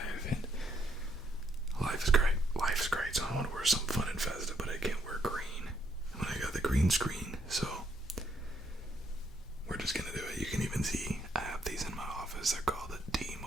and life is great. So I want to wear something fun and festive, but I can't wear green when I got the green screen, so we're just gonna do it. You can even see I have these in my office. They're called the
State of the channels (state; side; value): normal; both; correlation 0.73